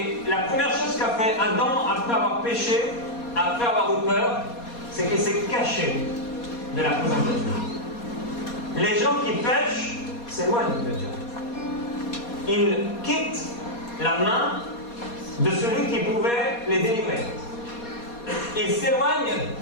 la première chose qu'a fait Adam après avoir péché, après avoir eu peur, c'est qu'il s'est caché de la présence de Dieu. Les gens qui pêchent s'éloignent de Dieu. Ils quittent la main de celui qui pouvait les délivrer. Ils s'éloignent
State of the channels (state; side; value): late; right; 4.2 ms